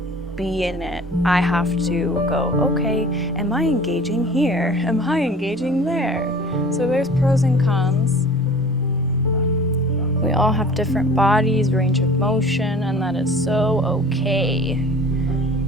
be in it. I have to go, okay, am I engaging here? Am I engaging there? So there's pros and cons. We all have different bodies, range of motion, and that is so okay.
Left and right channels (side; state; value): both; normal; correlation 0.44